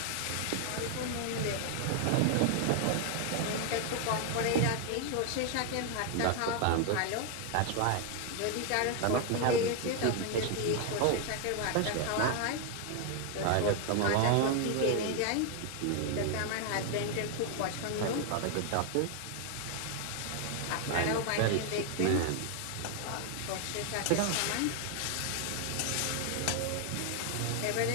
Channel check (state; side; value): different; both; correlation 0.00